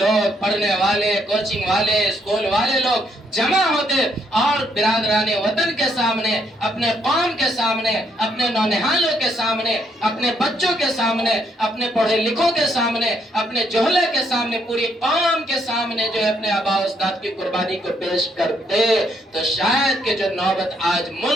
پڑھنے والے، کوچنگ والے، اسکول والے لوگ جمع ہوتے اور برادران وطن کے سامنے، اپنے قوم کے سامنے، اپنے نونہالوں کے سامنے، اپنے بچوں کے سامنے، اپنے پڑھے لکھوں کے سامنے، اپنے جوہلے کے سامنے، پوری قوم کے سامنے جو ہے اپنے آباء و اجداد کی قربانی کو پیش کرتے، تو شاید کہ جو نوبت آج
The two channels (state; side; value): normal; both; correlation 0.73